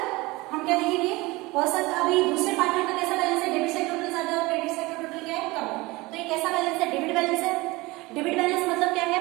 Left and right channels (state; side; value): quieter; left; 22.1 dB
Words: हम क्या देखेंगे, हो सकता अभी दूसरे पार्टनर का कैसा बैलेंस है, डेबिट साइड टोटल ज्यादा है और क्रेडिट साइड का टोटल क्या है, कम है। तो ये कैसा बैलेंस है, डेबिट बैलेंस है। डेबिट बैलेंस मतलब क्या है,